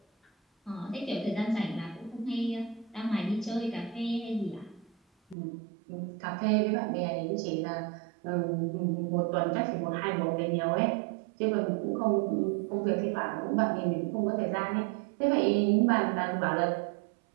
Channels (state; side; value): drops out; left; at 5.4 s